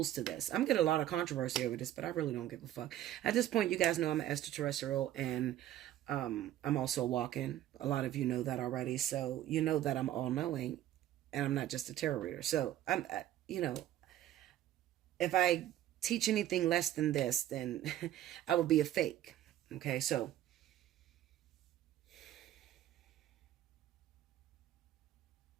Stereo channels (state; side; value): quieter; left; 12.8 dB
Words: to this. I'm getting a lot of controversy over this, but I really don't give a fuck. At this point, you guys know I'm an extraterrestrial, and I'm also walking. A lot of you know that already. So you know that I'm all-knowing, and I'm not just a tarot reader. So I'm, if I teach anything less than this, then I would be a fake. Okay, so